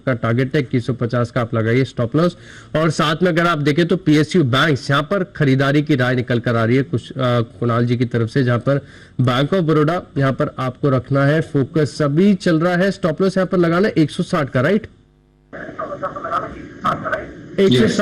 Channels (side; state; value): both; identical; correlation 1.00